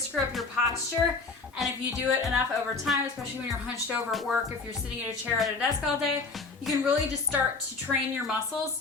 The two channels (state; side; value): quieter; right; 4.1 dB